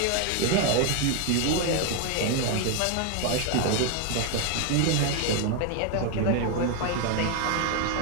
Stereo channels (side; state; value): both; different; correlation 0.01